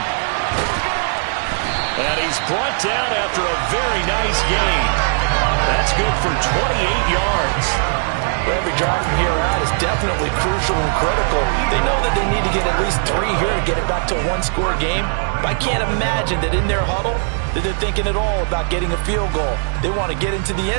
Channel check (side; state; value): left; silent; digital silence